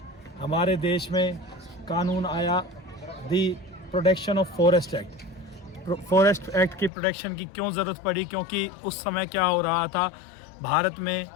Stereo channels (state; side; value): drops out; right; at 6.9 s